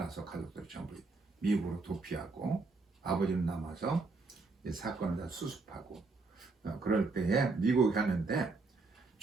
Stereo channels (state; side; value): quieter; left; 3.8 dB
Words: 가족들이 전부 미국으로 도피하고 아버지는 남아서 이 사건을 다 수습하고 그럴 때에 미국에 가는데